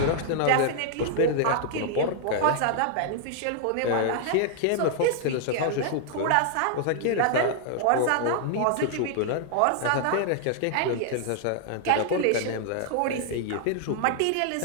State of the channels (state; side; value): different; both; correlation 0.00